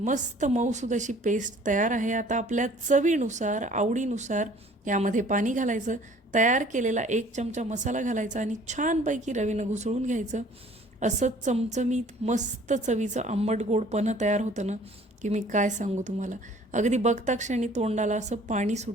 मऊसूद अशी पेस्ट तयार आहे. आता आपल्या चवीनुसार, आवडीनुसार यामध्ये पाणी घालायचं. तयार केलेला 1 चमचा मसाला घालायचा आणि छानपैकी रवीनं घुसळून घ्यायचं. असं चमचमीत मस्त चवीचं आंबट गोड पन्हं तयार होतं ना, की मी काय सांगू तुम्हाला. अगदी बघता क्षणी तोंडाला असं पाणी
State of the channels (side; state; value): both; normal; correlation 0.53